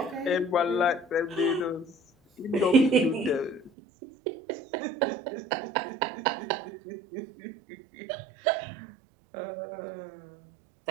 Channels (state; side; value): drops out; left; at 3.7 s